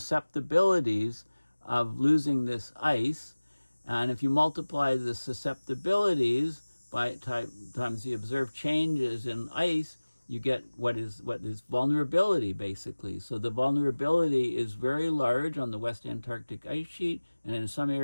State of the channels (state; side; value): inverted; both; correlation -1.00